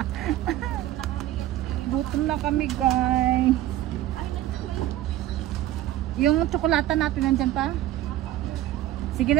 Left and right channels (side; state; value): left; quieter; 13.8 dB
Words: Gutom na kami guys. Yung tsokolata natin nandyan pa? Sige